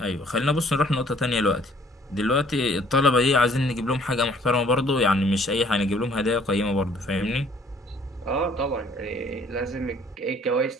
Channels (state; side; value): normal; both; correlation 0.59